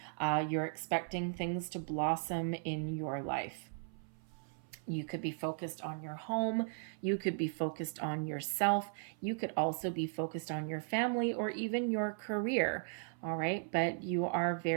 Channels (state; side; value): silent; left; 53 dB below the other